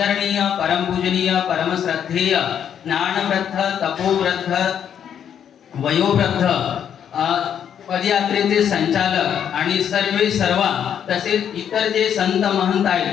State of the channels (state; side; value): quieter; right; 8.8 dB